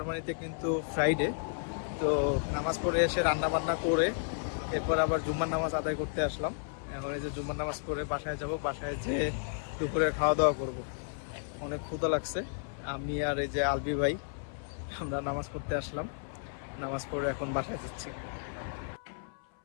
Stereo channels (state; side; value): silent; right; 56 dB below the other